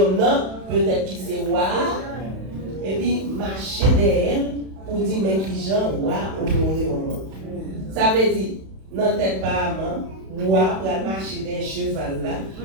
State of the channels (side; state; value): left; late; 32 ms